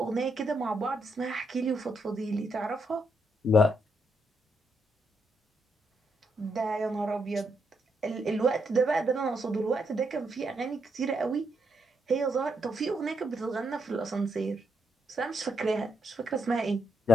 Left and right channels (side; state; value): both; normal; correlation 0.78